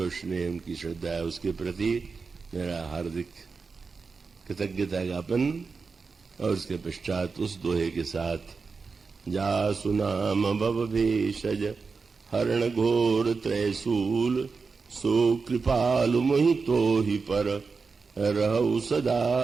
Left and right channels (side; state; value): left; quieter; 4.7 dB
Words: स्नेह उनकी श्रद्धा है उसके प्रति मेरा हार्दिक कृतज्ञता ज्ञापन। और उसके पश्चात उस दोहे के साथ, जासु नाम भव भेषज हरण घोर त्रैसूल, सो कृपालु मोहि तो ही पर रहु सदा